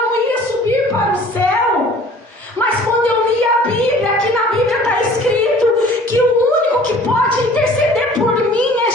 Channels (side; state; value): both; normal; correlation 0.49